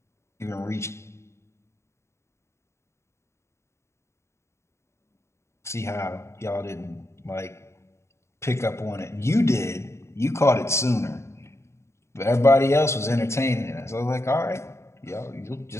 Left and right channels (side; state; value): right; late; 0.13 ms